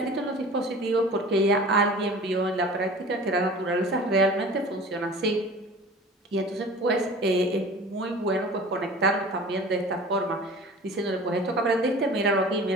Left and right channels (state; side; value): normal; both; correlation 0.41